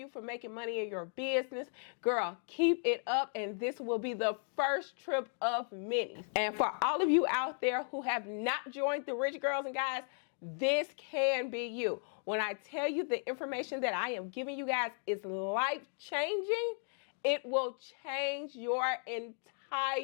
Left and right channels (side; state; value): right; silent; 54 dB below the other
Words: for making money in your business. Girl, keep it up, and this will be the first trip of many. And for all of you out there who have not joined the Rich Girls and Guys, this can be you. When I tell you the information that I am giving you guys is life-changing, it will change your